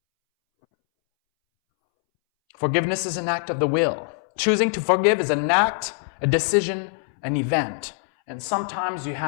Forgiveness is an act of the will. Choosing to forgive is an act, a decision, an event. And sometimes you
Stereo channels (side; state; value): right; silent; 63 dB below the other